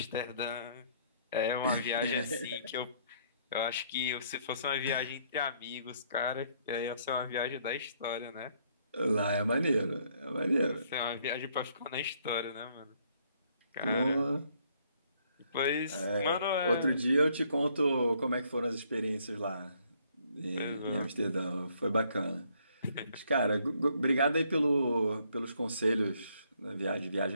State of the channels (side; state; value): both; inverted; correlation -0.67